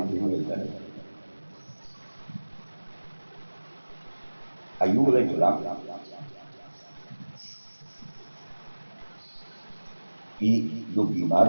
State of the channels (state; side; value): inverted; both; correlation -1.00